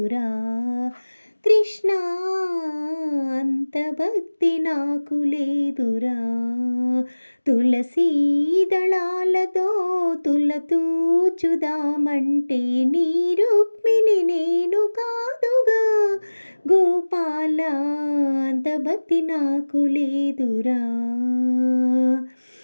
కృష్ణ, అంత భక్తి నాకు లేదురా. తులసీ దళాలతో తులతూచుదామంటే నీ రుక్మిణి నేను కాదుగా గోపాల, అంత భక్తి నాకు లేదురా.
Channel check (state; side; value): inverted; both; correlation -1.00